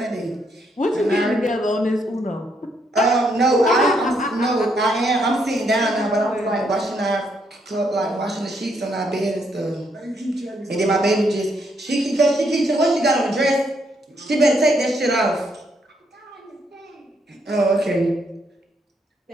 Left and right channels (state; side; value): normal; both; correlation 0.74